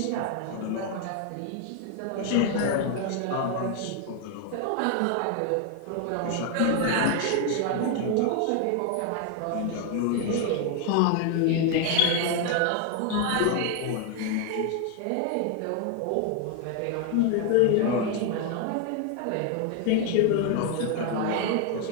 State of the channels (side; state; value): both; different; correlation 0.01